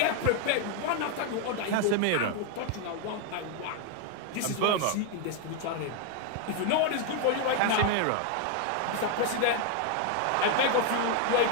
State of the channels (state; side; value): different; both; correlation 0.01